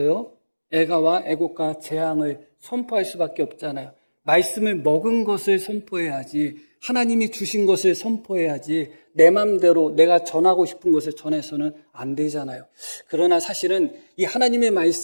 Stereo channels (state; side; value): inverted; both; correlation -1.00